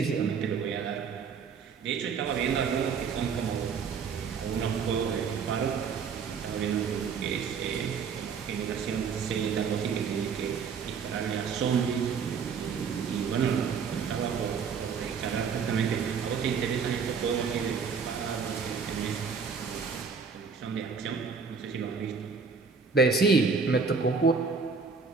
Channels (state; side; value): quieter; left; 5.7 dB